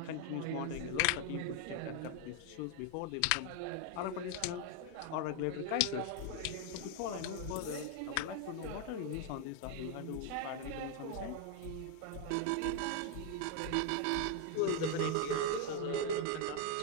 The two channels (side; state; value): both; different; correlation 0.01